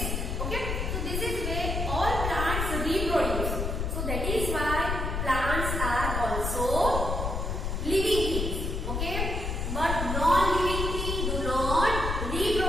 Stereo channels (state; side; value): noise; left; rumble, 1 dB below the sound